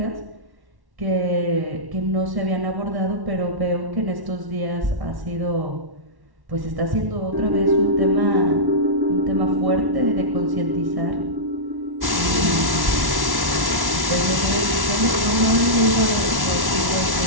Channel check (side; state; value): left; late; 1.1 ms